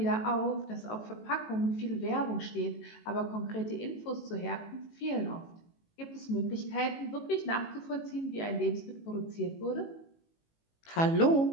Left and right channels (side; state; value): right; late; 18 ms